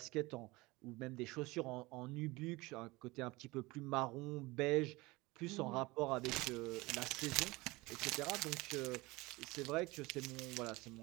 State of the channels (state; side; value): quieter; left; 22.2 dB